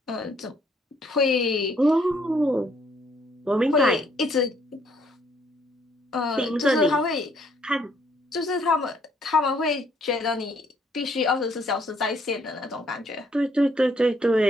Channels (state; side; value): normal; both; correlation 0.67